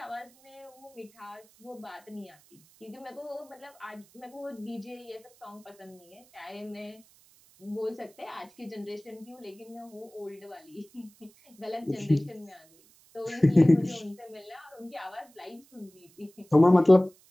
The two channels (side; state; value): right; noise; hiss, 28 dB below the sound